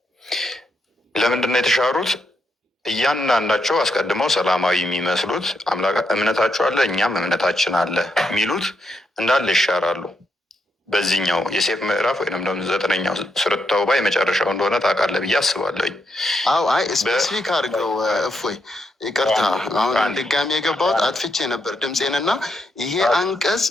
ለምንድን ነው የተሻሩት? እያንዳንዳቸው አስቀድመው ሰላማዊ የሚመስሉት እምነታቸው አለ እኛም እምነታችን አለ የሚሉት እንዳለ ይሻራሉ። በዚህኛው የሴፍ ምዕራፍ ወይም ደግሞ 9ኛው ሱረቱ ተውባ የመጨረሻው እንደሆነ ታውቃለህ ብዬ አስባለሁኝ። አዎ አይ ስፔሲፊክ አድርገው እፎይ፣ ይቅርታ አሁን ድጋሚ የገባሁት አጥፍቼ ነበር ድምፄንና ይሄ አንቀጽ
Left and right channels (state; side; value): normal; both; correlation 0.80